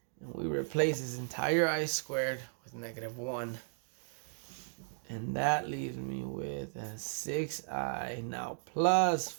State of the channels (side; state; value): left; silent; digital silence